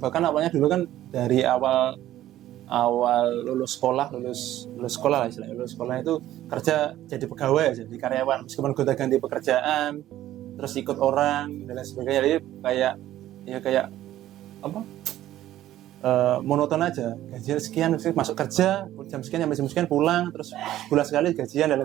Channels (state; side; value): quieter; left; 13.6 dB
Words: kan awalnya dulu kan dari awal lulus sekolah lah istilahnya, lulus sekolah itu kerja jadi pegawai aja, jadi karyawan, meskipun gonta ganti pekerjaan, terus ikut orang dan lain sebagainya. Jadi kayak monoton aja, gajian sekian masuk kerja jam sekian sampai jam sekian pulang, terus bulan sekali gajian dan